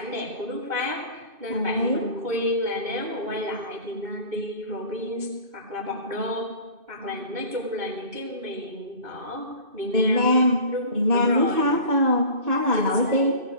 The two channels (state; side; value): late; left; 2.6 ms